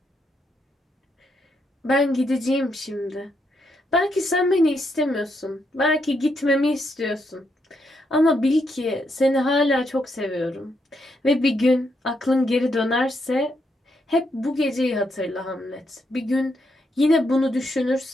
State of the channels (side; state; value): both; normal; correlation 0.79